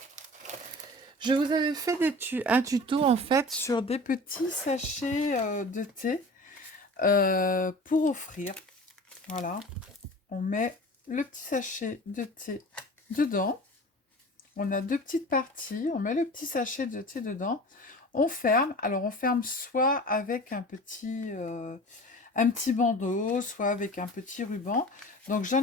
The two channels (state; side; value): normal; both; correlation 0.39